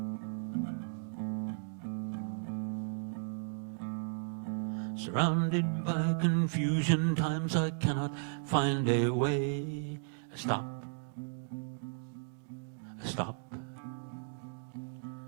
Surrounded by confusion, times I cannot find a way. I stop. I stop.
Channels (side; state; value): left; silent; digital silence